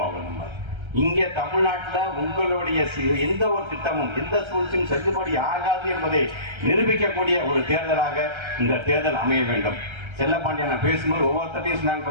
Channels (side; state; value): left; late; 1.3 ms